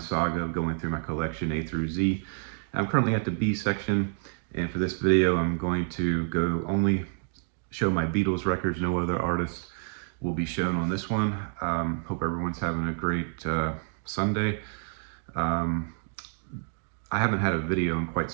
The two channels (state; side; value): silent; left; digital silence